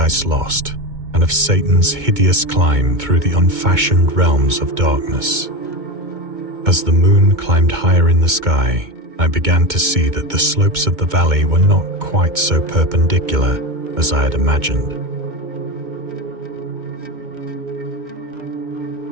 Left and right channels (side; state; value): left; late; 2.2 ms